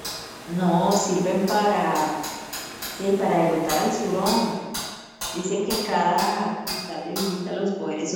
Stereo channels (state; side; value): identical; both; correlation 1.00